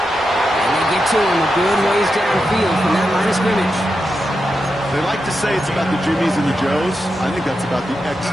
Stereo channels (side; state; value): both; normal; correlation 0.88